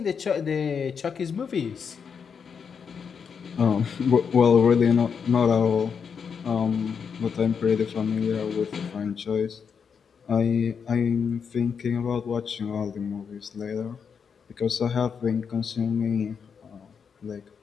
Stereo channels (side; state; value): right; quieter; 6.5 dB